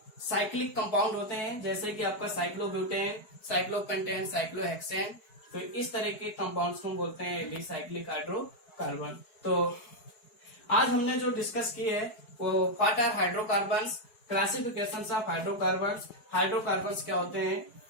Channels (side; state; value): right; late; 4.7 ms